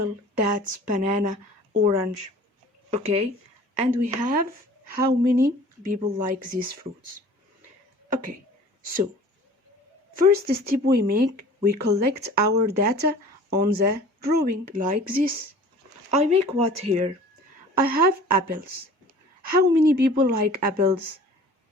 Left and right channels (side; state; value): both; normal; correlation 0.46